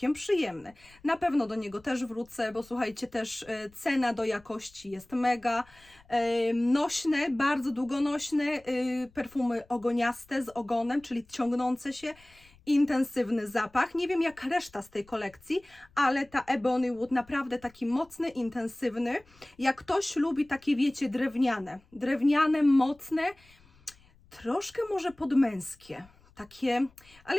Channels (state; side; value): noise; left; rumble, 28 dB below the sound